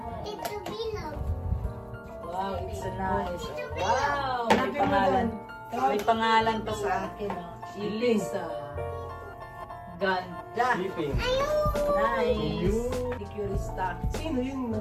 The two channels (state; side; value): identical; both; correlation 1.00